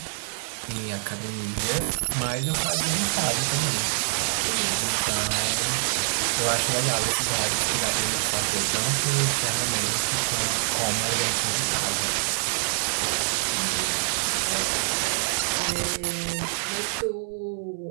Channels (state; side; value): silent; left; 59 dB below the other